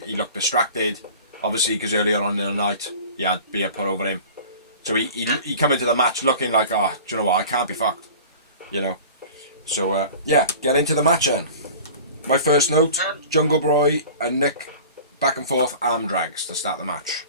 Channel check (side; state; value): both; inverted; correlation -0.40